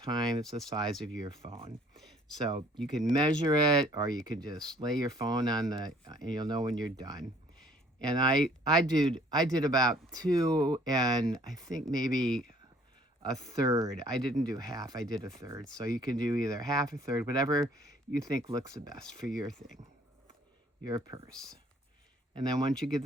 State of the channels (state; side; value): normal; both; correlation 0.58